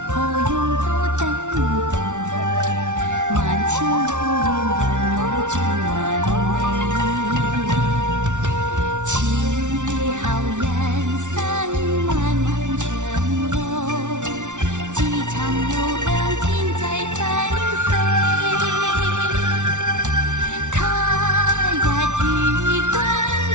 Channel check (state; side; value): late; left; 0.86 ms